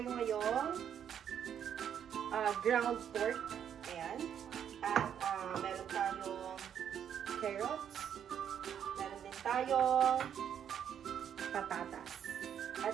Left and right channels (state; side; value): quieter; left; 8.9 dB